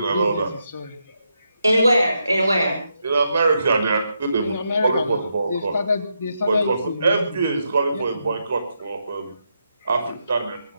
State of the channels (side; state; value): both; inverted; correlation -0.82